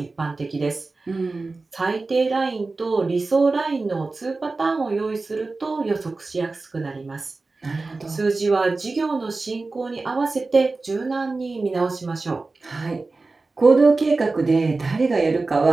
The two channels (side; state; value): left; quieter; 3.6 dB